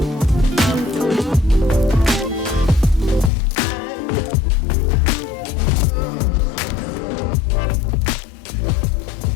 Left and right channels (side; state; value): right; drops out; at 3.3 s